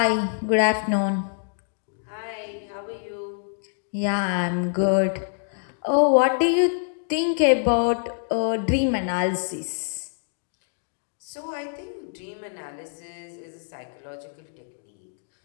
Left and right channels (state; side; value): silent; right; digital silence